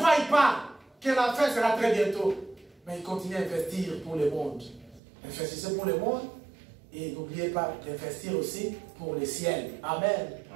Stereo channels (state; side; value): drops out; left; at 5.0 s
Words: pas que la fin sera très bientôt. Mais ils continuent à investir pour le monde. Investissez pour le monde. Et n'oubliez pas d'investir aussi pour le ciel. Amen.